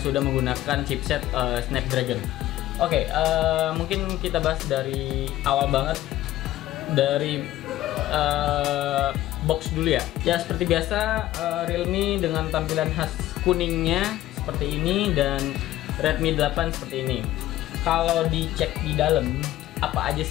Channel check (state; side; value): quieter; right; 14.8 dB